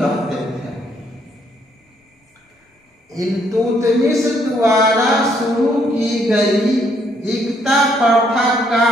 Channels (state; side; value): normal; both; correlation 0.69